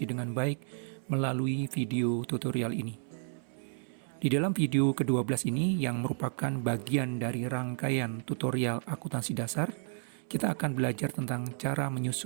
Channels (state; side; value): silent; left; 56 dB below the other